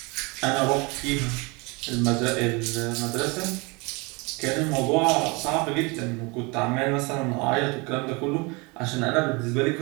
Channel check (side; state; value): left; quieter; 27.7 dB